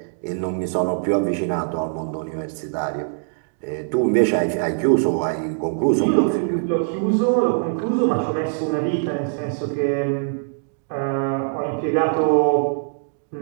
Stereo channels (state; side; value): silent; left; digital silence